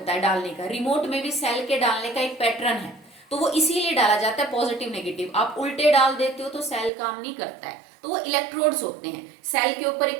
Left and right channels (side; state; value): left; drops out; at 6.9 s